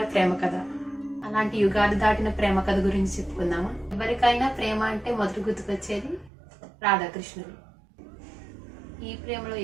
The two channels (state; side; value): drops out; left; at 6.3 s